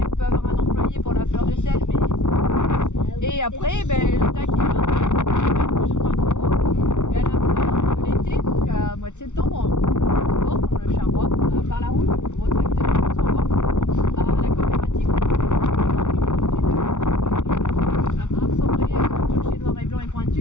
on peut avoir un employé pour la fleur de sel, mais et après, ben, le tac il est là, il va être plus ou moins gros. Et à la fin de l'été, donc à mois de septembre, on porte, on le charroie par la route, gros tracteur, on s'en va à la coopérative. Un sombré, le clocher noir et blanc et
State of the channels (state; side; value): late; right; 0.84 ms